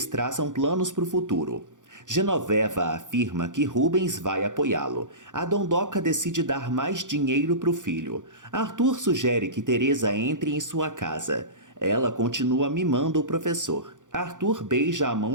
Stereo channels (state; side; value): late; left; 0.87 ms